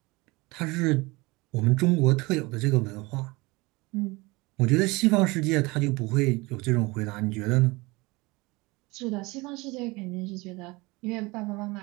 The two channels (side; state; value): left; quieter; 23.8 dB